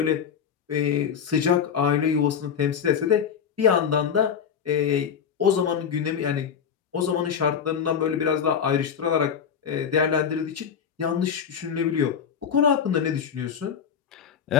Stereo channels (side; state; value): right; quieter; 7.5 dB